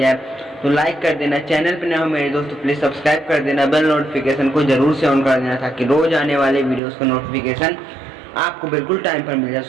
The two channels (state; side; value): drops out; left; at 6.8 s